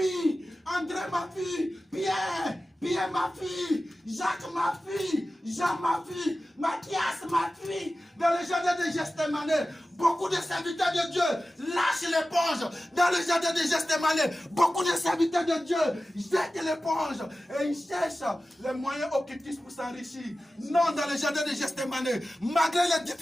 André m'a fui. Pierre ma fille, Jacques ma fille, Jean ma fille, Mathias ma fille. Dans le jardin de Gethsémani, beaucoup de serviteurs de Dieu lâchent l'éponge. Dans le jardin de Gethsémani, beaucoup de serviteurs de Dieu jettent l'éponge et ils cherchent les moyens occultistes pour s'enrichir. Non, dans le jardin de Gethsémani, malgré les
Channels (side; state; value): both; normal; correlation 0.95